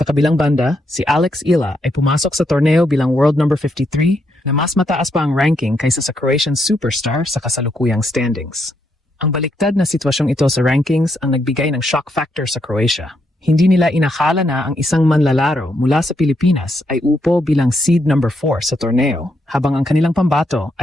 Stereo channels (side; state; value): both; normal; correlation 0.78